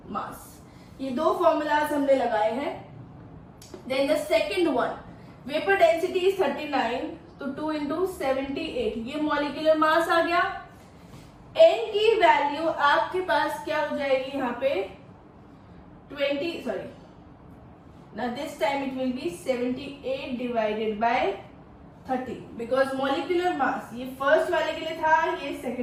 mass, ये 2 फॉर्मूलाज हमने लगाए हैं। Then the second one, vapour density is 39, तो 2 इंटू 78, ये मॉलिक्यूलर मास आ गया। n की वैल्यू आपके पास क्या हो जाएगी यहाँ पे 20, sorry now this time it will be 78 divided by 30, because molecular mass ये फर्स्ट वाले के लिए था, ये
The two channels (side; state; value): both; identical; correlation 1.00